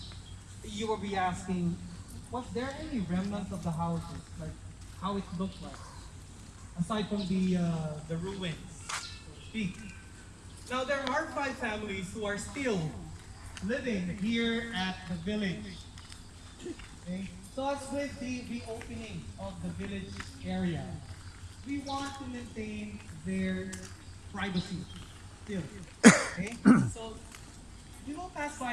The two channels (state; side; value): identical; both; correlation 1.00